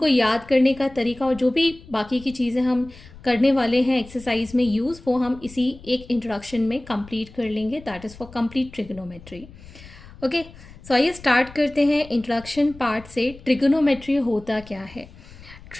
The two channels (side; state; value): left; noise; rumble, 19 dB below the sound